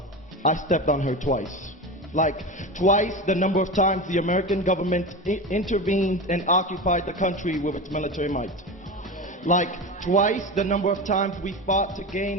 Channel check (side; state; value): both; normal; correlation 0.25